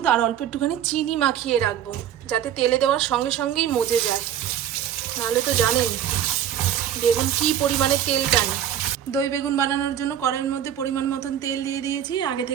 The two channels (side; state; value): left; quieter; 10.2 dB